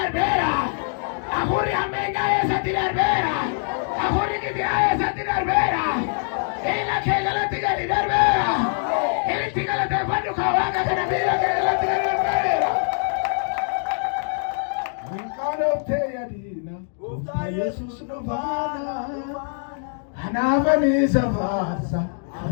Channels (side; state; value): right; silent; digital silence